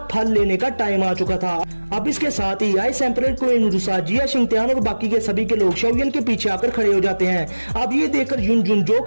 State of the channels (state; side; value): inverted; both; correlation -1.00